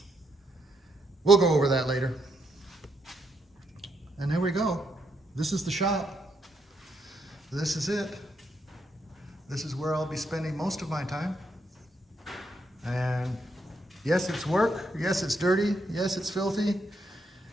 We'll go over that later. And there we go. This is the shop. This is it. This is where I'll be spending most of my time. And yes, it's work. Yes, it's dirty. Yes, it's filthy.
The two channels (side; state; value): both; normal; correlation 0.77